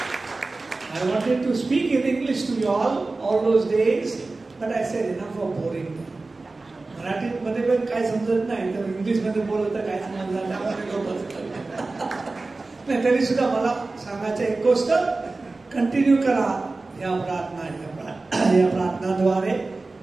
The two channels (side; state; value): left; quieter; 3.4 dB